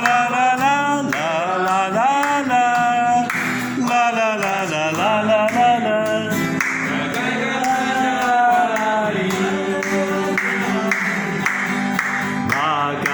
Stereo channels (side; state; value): both; identical; correlation 1.00